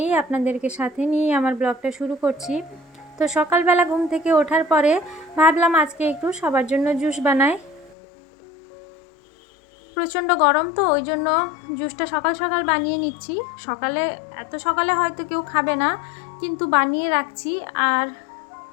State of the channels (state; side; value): drops out; right; at 8.0 s